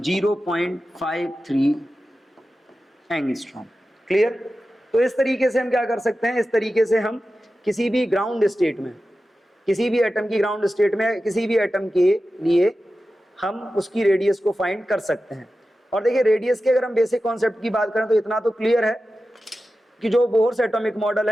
एंगस्ट्रॉम। क्लियर? तो इस तरीके से हम क्या कर सकते हैं, इस तरीके से हम किसी भी ग्राउंड स्टेट में, किसी भी एटम की ग्राउंड स्टेट में किसी भी एटम के लिए हम उसकी रेडियस को फाइंड कर सकते हैं। और देखिए रेडियस के अगर हम बेसिक कॉन्सेप्ट की बात करें तो इतना तो क्लियर है कि जो बोर्स एटॉमिक मॉडल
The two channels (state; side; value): normal; both; correlation 0.93